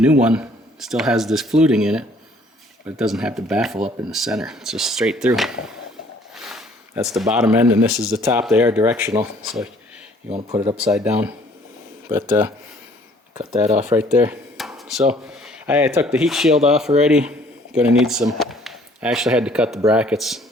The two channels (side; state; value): both; normal; correlation 0.58